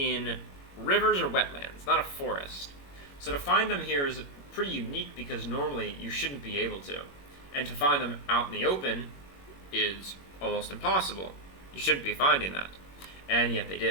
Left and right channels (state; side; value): late; right; 21 ms